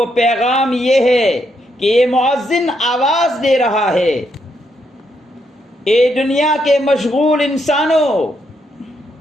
پیغام یہ ہے کہ یہ مؤذن آواز دے رہا ہے، اے دنیا کے مشغول انسانوں،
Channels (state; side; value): normal; both; correlation 0.78